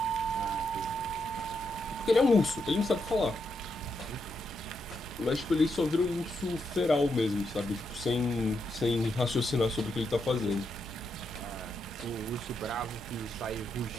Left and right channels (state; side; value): normal; both; correlation 0.82